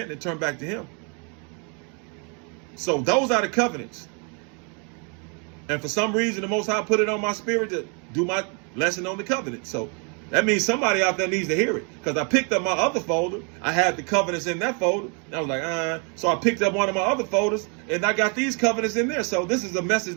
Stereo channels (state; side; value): quieter; left; 36.6 dB